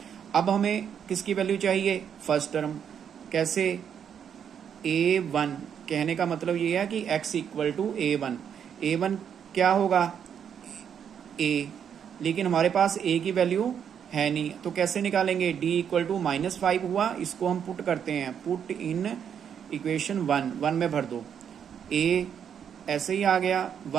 अब हमें किसकी वैल्यू चाहिए फर्स्ट टर्म, कैसे a1, कहने का मतलब ये है कि x इक्वल टू a1 क्या होगा a, लेकिन हमारे पास a की वैल्यू है नहीं, तो कैसे निकालेंगे d इक्वल टू -5 हुआ, इसको हम पुट करते हैं, पुट इन इक्वेशन 1 में भर दो, a ऐसे ही आ गया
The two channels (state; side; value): quieter; left; 8.1 dB